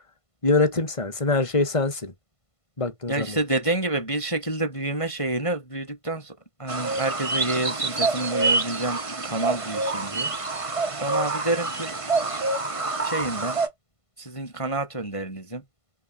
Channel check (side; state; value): right; late; 1.5 ms